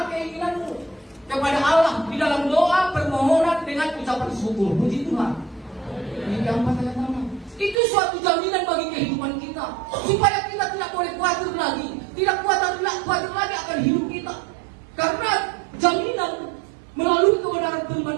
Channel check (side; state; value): left; drops out; at 7.8 s